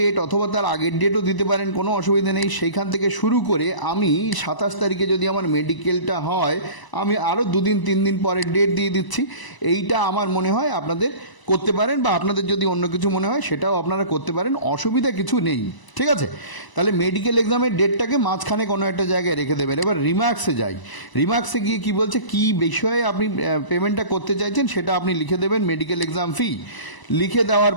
অথবা তার আগের ডেটও দিতে পারেন, কোনো অসুবিধা নেই। সেইখান থেকে শুরু করে আমি 27 তারিখে যদি আমার মেডিকেলটা হয়, আমি আরও 2-3 দিন পরের ডেট দিয়ে দিচ্ছি। এইটা আমার মনে হয় আপনাদের করতে পারেন, বা আপনাদের যদি অন্য কিছু মনে হয় সেটাও আপনারা করতে পারেন, অসুবিধা কিছু নেই। ঠিক আছে, তাহলে মেডিকেল এক্সামের ডেটটাকে মাঝখানে কোনো একটা জায়গায় রেখে দেবেন। এবার রিমার্কসে যাই, রিমার্কসে গিয়ে কি বলছে, কি বিষয়ে আপনি পেমেন্টটা করতে চাইছেন সেটা আপনি লিখে দেবেন, মেডিকেল এক্সাম ফি লিখে দেওয়ার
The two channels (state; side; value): late; right; 1.0 ms